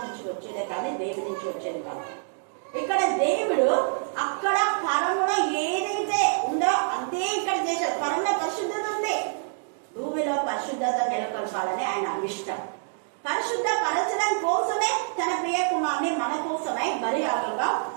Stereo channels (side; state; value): left; silent; 60 dB below the other